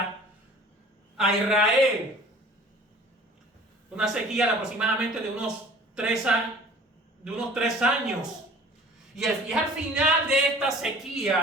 a Israel. Una sequía de aproximadamente de unos 3 años. Y es al final de esta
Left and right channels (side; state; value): both; normal; correlation 0.47